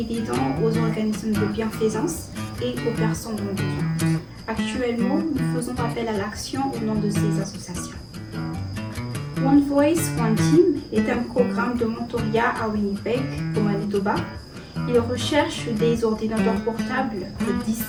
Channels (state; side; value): identical; both; correlation 1.00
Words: des dons aux organismes de bienfaisance et aux personnes en besoin. Actuellement, nous faisons appel à l'action au nom de ces associations. One Voice, One Team est un programme de mentorat à Winnipeg, au Manitoba. Il recherche des ordinateurs portables de 10